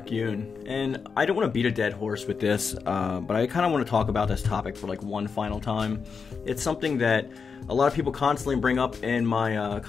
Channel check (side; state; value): right; quieter; 5.6 dB